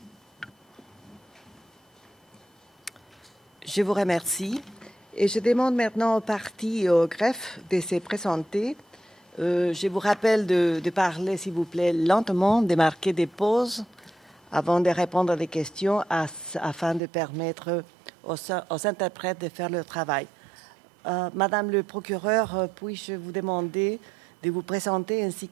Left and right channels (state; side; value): drops out; left; at 17.0 s